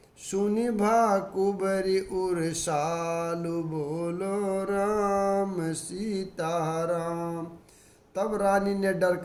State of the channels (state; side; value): identical; both; correlation 1.00